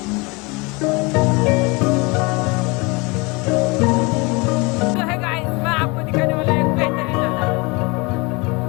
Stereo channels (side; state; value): right; quieter; 27.1 dB